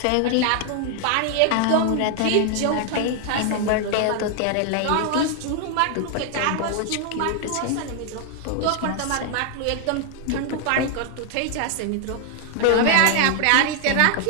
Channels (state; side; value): different; both; correlation 0.00